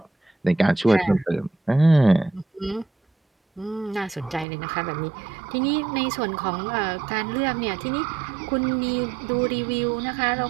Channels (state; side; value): drops out; left; at 4.5 s